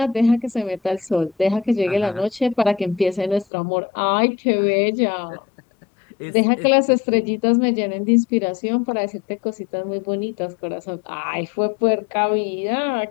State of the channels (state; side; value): drops out; right; at 3.5 s